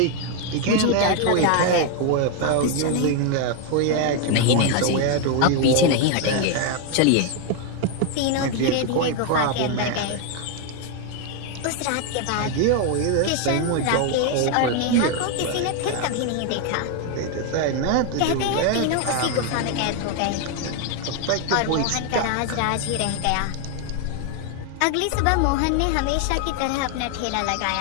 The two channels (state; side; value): different; both; correlation 0.01